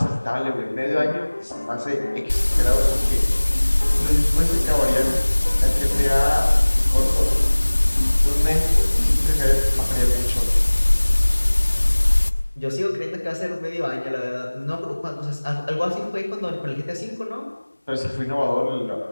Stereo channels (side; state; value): both; inverted; correlation -1.00